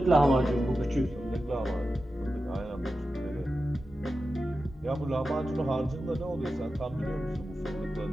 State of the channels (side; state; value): both; normal; correlation 0.92